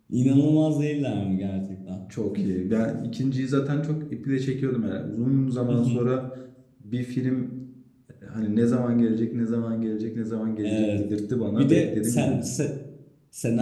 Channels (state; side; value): identical; both; correlation 1.00